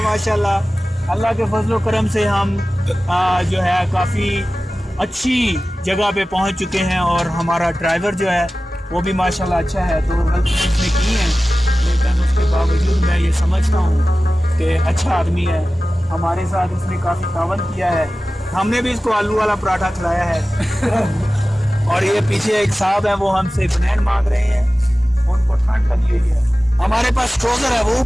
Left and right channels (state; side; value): normal; both; correlation 0.96